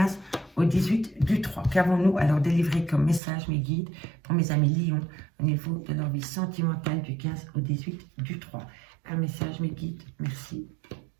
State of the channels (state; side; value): drops out; left; at 3.2 s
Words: au 18 du 3. Qu'avons-nous alors délivré comme message, mes guides, pour mes amis Lions au niveau de leur vie sentimentale du 15 au 18 du 3. Un message, mes guides. Merci.